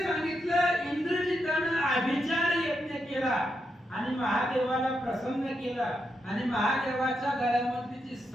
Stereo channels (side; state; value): both; normal; correlation 0.83